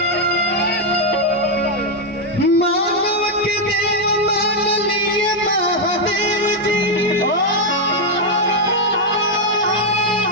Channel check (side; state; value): both; normal; correlation 0.01